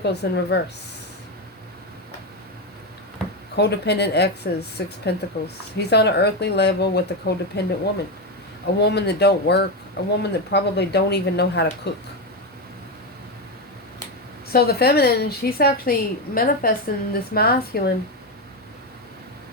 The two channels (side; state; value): both; normal; correlation 0.11